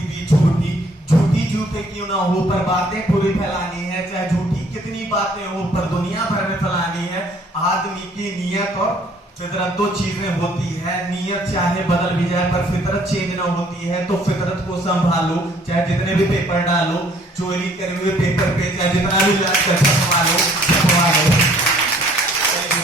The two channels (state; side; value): normal; both; correlation 0.60